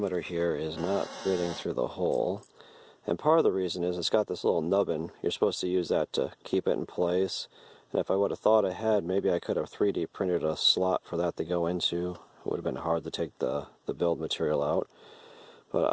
here is not fitting through the hole. And part of the reason is it's got this little nubbin. You're supposed to use that to keep it in place. And if I would have thought ahead, maybe I could have 3D printed a slot for that to go into. It would have been hard to take the build material out. But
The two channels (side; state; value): both; identical; correlation 1.00